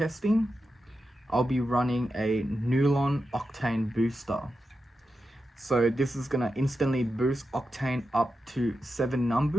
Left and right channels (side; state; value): both; normal; correlation 0.89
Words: I'll be running a Nulon Octane booster. So this is going to instantly boost Octane up to 7